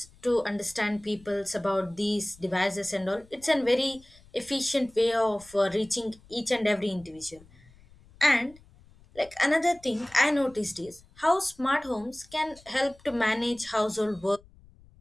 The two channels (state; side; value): noise; left; rumble, 26 dB below the sound